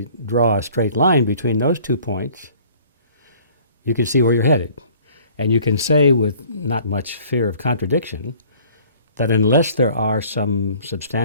draw a straight line between those 2 points, you can see where you're headed. And you can say with not much fear of contradiction that unless there are some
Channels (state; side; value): inverted; both; correlation -0.53